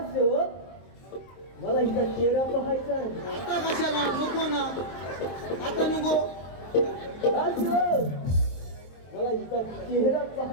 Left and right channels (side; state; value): right; late; 23 ms